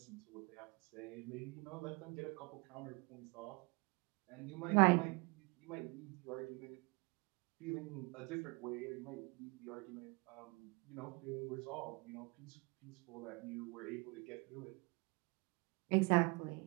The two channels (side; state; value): left; quieter; 28.6 dB